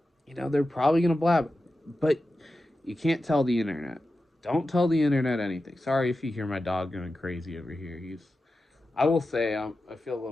probably gonna blab, but you can't tell the internet. Don't tell the internet anything. Sorry if you hear my dog going crazy over here. I will say, I feel a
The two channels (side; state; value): both; normal; correlation 0.92